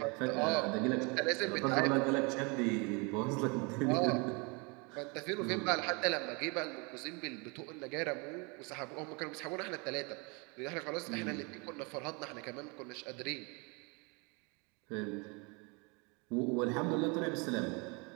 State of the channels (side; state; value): left; quieter; 30.4 dB